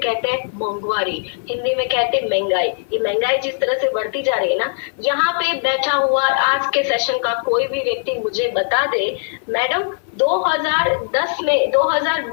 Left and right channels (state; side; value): silent; right; 57 dB below the other